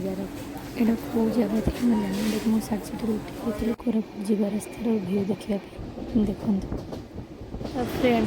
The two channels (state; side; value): identical; both; correlation 1.00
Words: एडा को जगह थी मैं जानी देख मु साइड साइड उठी थी कोरापुट जीवा रास्तार व्यू देखिया पे देखन तो